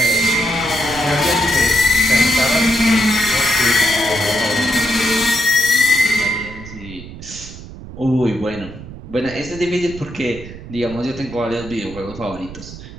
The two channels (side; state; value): right; noise; rumble, 14 dB below the sound